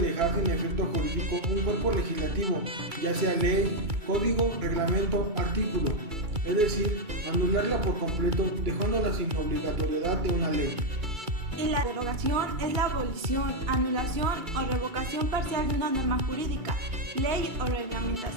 sin efecto jurídico un cuerpo legislativo, ya sea ley, código, reglamento, artículo, es decir, anularla por completo, dejándola sin obligatoriedad de una ley. Y la derogación es la abolición, anulación o revocación parcial de una norma jurídica, ley o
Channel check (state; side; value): late; left; 2.3 ms